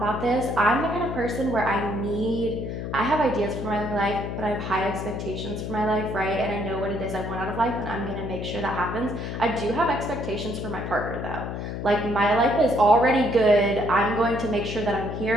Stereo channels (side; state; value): left; noise; hum, 5 dB below the sound